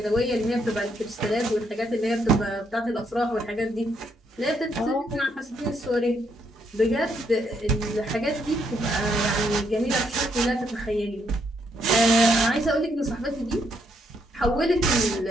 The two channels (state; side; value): normal; both; correlation 0.74